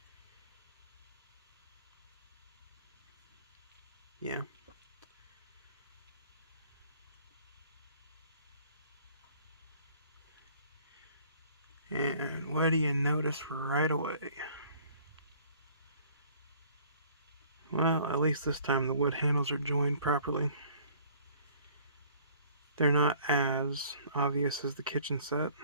Yeah. And what do you notice right away? Well, at least this time the wood handles are joined properly. They're not as obvious as the kitchen set.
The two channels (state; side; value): inverted; both; correlation -0.55